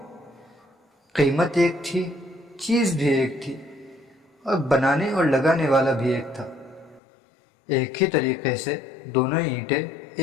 قیمت ایک تھی، چیز بھی ایک تھی، اور بنانے اور لگانے والا بھی ایک تھا۔ ایک ہی طریقے سے دونوں اینٹیں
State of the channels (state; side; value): drops out; right; at 7.0 s